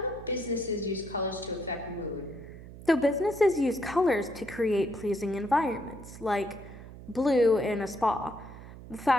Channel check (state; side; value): noise; right; hum, 15 dB below the sound